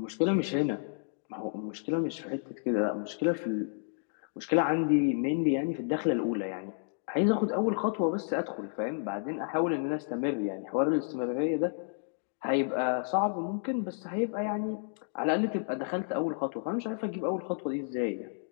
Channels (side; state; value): right; silent; digital silence